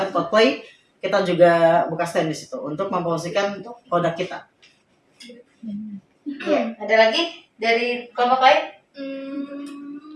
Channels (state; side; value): identical; both; correlation 1.00